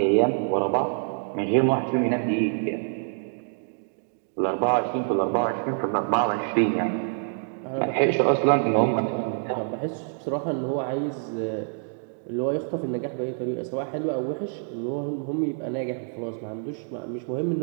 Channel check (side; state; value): left; silent; 61 dB below the other